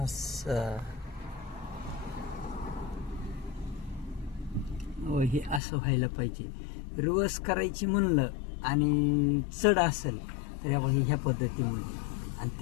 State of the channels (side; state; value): right; drops out; at 5.6 s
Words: असं हे असं व्हायला पाहिजे. रिवर्स करायची म्हणलं आणि चढ असेल तर ह्या पद्धतीमध्ये, आणि